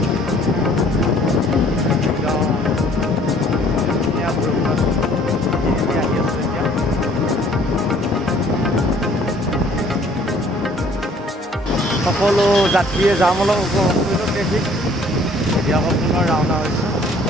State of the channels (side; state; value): both; normal; correlation 0.57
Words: ধুনীয়া বৰষুণত আহি আছোঁ এতিয়া। সকলো যাত্ৰীয়ে যাম অলপ উপভোগ কৰিলোঁ ট্ৰেফিক। এতিয়া আকৌ পুনৰ ৰাওনা হৈছোঁ।